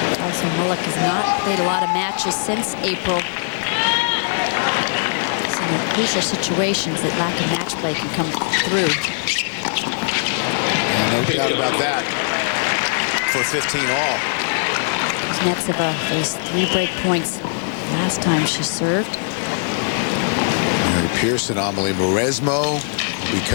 Molik has not played a lot of matches since April. It's in the crucial situations that lack of match play can come through. No doubt about that. For 15 all. Kuznetsova faced 3 break points last time she served. Mary Pearson, Amelie Mauresmo will be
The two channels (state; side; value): silent; right; 65 dB below the other